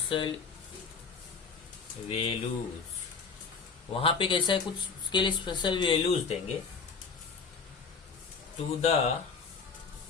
values. वहां पे कैसा है, कुछ उसके लिए स्पेशल वैल्यूज देंगे to the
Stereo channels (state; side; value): quieter; right; 5.2 dB